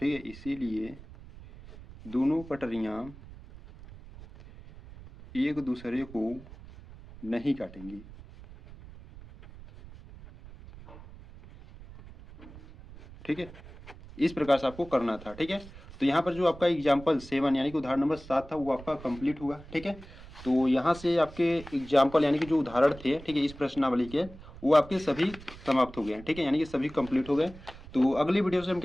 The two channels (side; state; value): right; noise; rumble, 18 dB below the sound